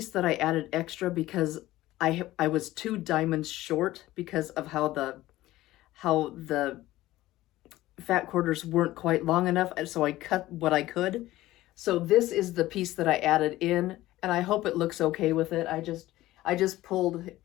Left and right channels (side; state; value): right; quieter; 16.4 dB